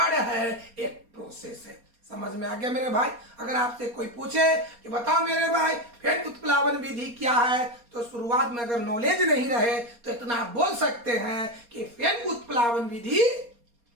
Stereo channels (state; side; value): late; left; 4.2 ms